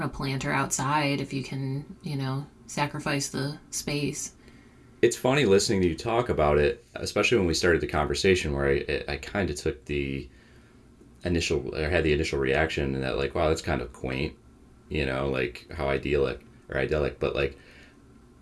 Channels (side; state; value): both; identical; correlation 1.00